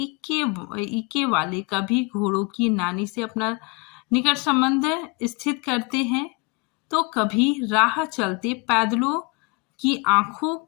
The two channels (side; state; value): right; quieter; 28.5 dB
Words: वाले कभी घोड़ों की नानी से अपना निकट संबंध स्थित करते हैं, तो कभी राह चलते पैदलों की आंखों